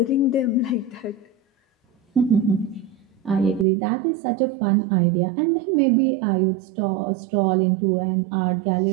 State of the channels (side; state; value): left; drops out; at 3.7 s